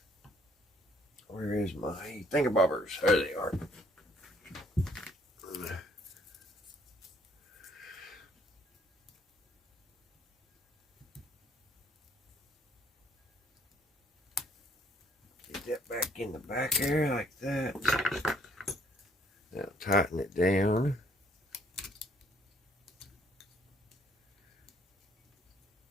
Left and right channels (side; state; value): both; normal; correlation 0.64